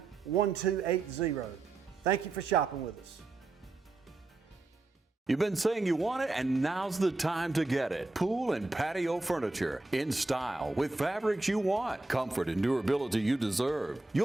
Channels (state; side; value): quieter; left; 3.1 dB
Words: Thank you for shopping with us. You've been saying you want it, and now's the time to get it. Pool and patio furniture in style with fabrics you want, comfort and durability you deserve.